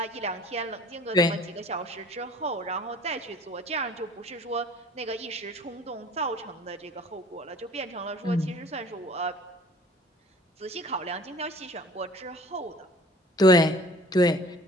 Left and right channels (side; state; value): both; normal; correlation 0.48